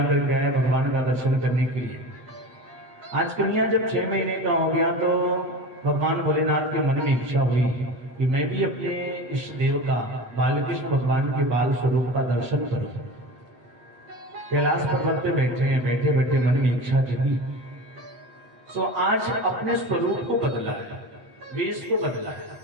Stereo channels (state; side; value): late; left; 8.3 ms